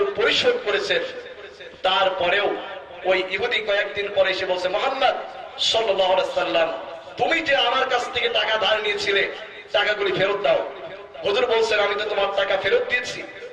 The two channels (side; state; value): both; identical; correlation 1.00